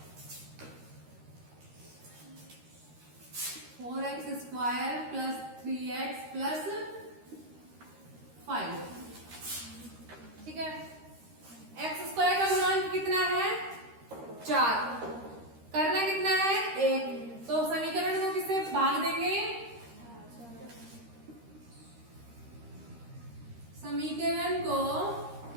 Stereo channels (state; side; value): late; left; 13 ms